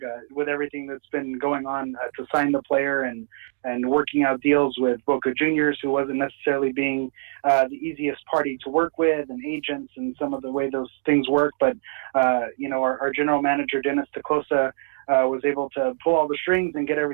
with everything that's been going on to sign the player and working out deals with Boca Juniors, who wasn't necessarily being the easiest party to work with, and agents and some of the way those things work. But our general manager Dennis Teclosa was able to pull all the strings and get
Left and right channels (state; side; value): silent; left; digital silence